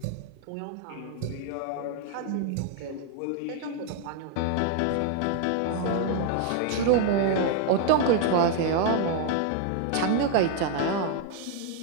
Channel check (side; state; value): both; different; correlation 0.00